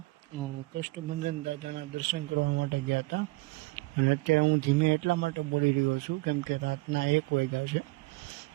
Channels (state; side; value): quieter; left; 23.1 dB